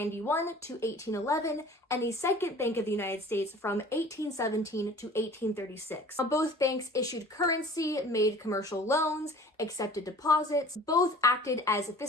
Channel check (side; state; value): both; normal; correlation 0.46